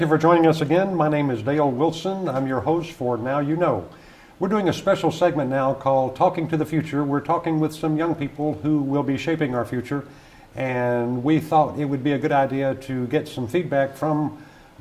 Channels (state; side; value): identical; both; correlation 1.00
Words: you for joining us again. My name is Dale Wilson. I'm your host for Now You Know. We're doing a special segment now called Talking to the Future. We're talking with some young people who will be shaping our future, and we thought it would be a good idea to get some feedback from